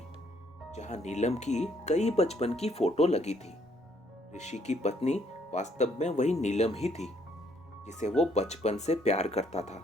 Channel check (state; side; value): normal; both; correlation 0.67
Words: जहां नीलम की कई बचपन की फोटो लगी थी। ऋषि की पत्नी वास्तव में वही नीलम ही थी। जिसे वो बचपन से प्यार करता था।